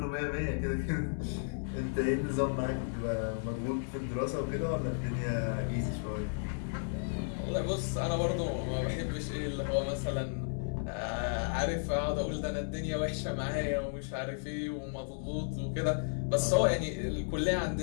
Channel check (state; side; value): silent; right; 55 dB below the other